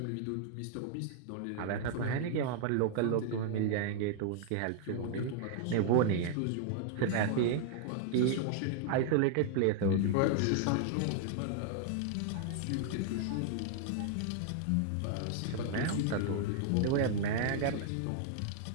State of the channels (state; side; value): different; both; correlation 0.00